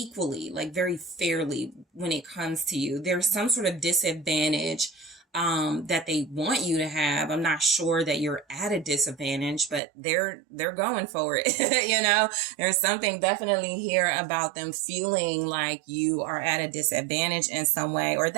like very fairly when it comes to you. There's some sort of disadvantage that they want you to have. I'm not sure that you're at a disadvantage, but they're going for it. You know, there's something definitely here about them feeling like you are at a disadvantage in some way, or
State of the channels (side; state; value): left; drops out; at 9.8 s